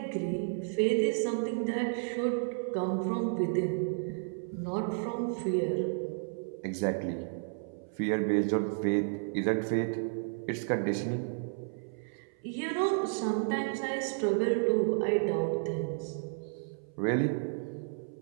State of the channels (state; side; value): silent; left; 56 dB below the other